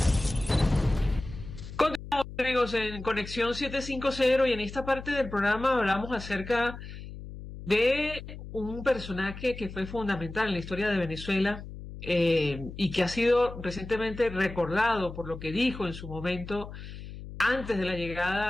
Continuamos, amigos, en Conexión 750, y en esta parte del programa hablamos acerca de un personaje que fue fundamental en la historia de Venezuela y que ha sido recientemente recordado por lo que dijo en su momento antes de la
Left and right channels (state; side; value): noise; left; hum, 12 dB below the sound